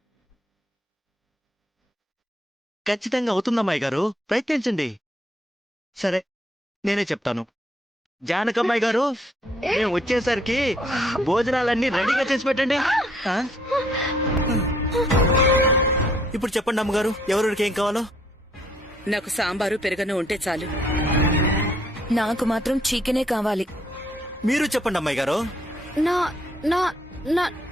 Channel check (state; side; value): normal; both; correlation 0.67